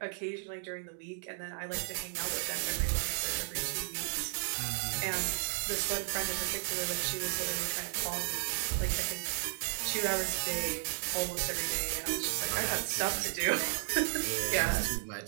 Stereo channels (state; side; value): silent; left; 55 dB below the other